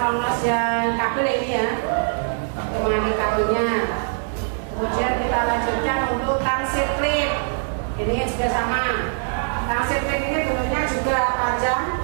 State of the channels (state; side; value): silent; left; 63 dB below the other